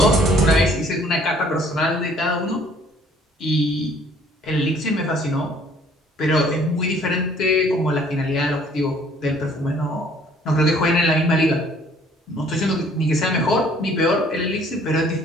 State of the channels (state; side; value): normal; both; correlation 0.58